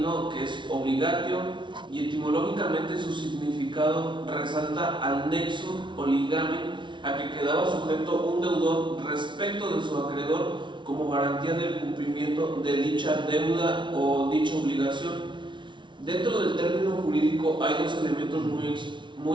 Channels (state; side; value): late; left; 0.24 ms